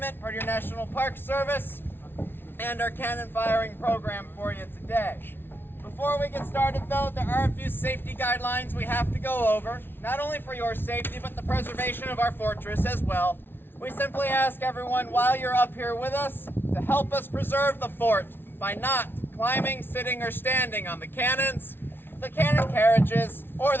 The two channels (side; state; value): right; late; 0.11 ms